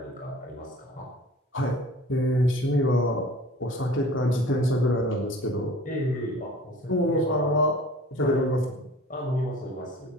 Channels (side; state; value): both; normal; correlation 0.45